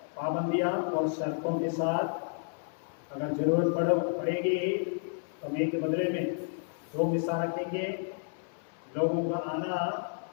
पाबंदियां और शर्तों के साथ, अगर जरूरत पड़ेगी तो मैं के बदले में 2 मिसा रखेंगे। लोगों का आना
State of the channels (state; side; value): silent; right; 57 dB below the other